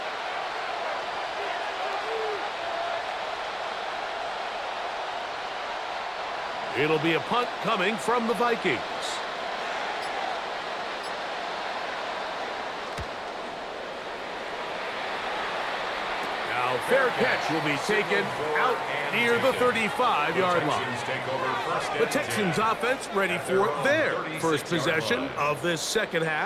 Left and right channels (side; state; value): both; identical; correlation 1.00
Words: It'll be a punt coming from the Vikings. Now fair catch will be taken out near the 35-yard line. The Texans offense ready for their first possession of this second